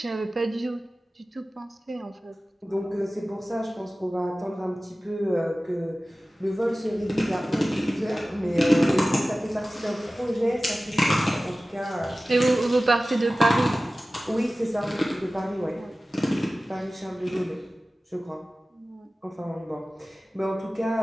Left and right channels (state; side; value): normal; both; correlation 0.97